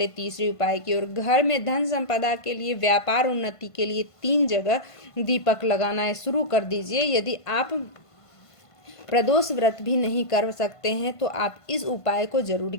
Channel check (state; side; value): late; right; 1.5 ms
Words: तीसरे उपाय की ओर। घर में धन संपदा के लिए, व्यापार उन्नति के लिए 3 जगह दीपक लगाना है। शुरू कर दीजिए। यदि आप प्रदोष व्रत भी नहीं कर सकते हैं तो आप इस उपाय को जरूर